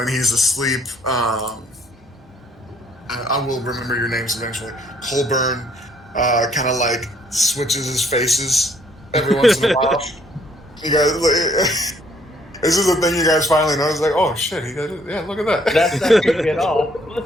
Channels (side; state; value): both; normal; correlation 0.65